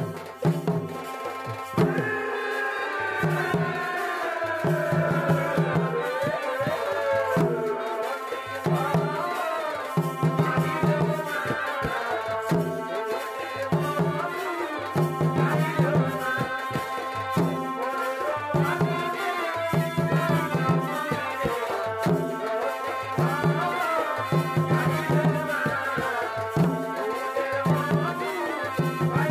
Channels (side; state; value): both; identical; correlation 1.00